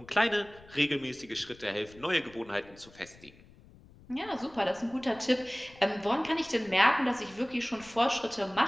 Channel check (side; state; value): left; noise; rumble, 23 dB below the sound